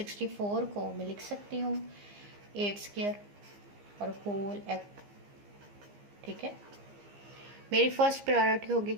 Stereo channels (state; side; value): late; left; 15 ms